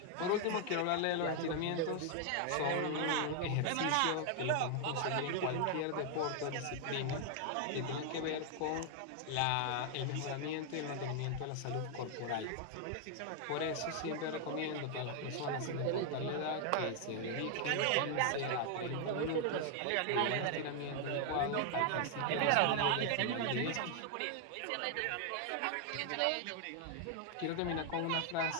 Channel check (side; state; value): both; different; correlation 0.00